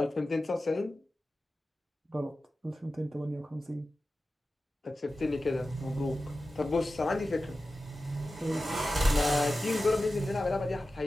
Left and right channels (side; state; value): both; normal; correlation 0.94